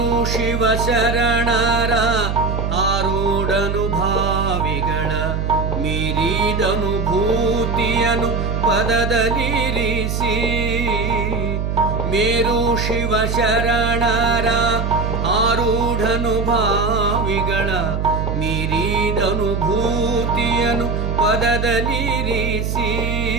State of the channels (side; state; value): right; noise; hum, 1 dB below the sound